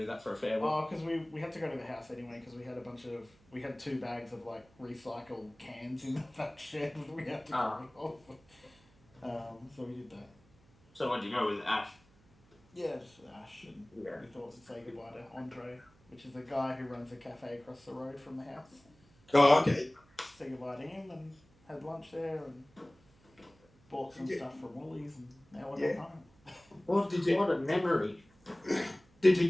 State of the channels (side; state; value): right; noise; hum, 29 dB below the sound